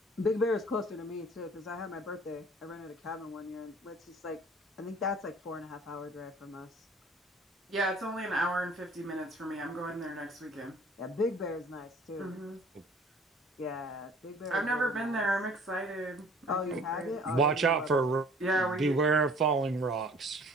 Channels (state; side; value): normal; both; correlation 0.51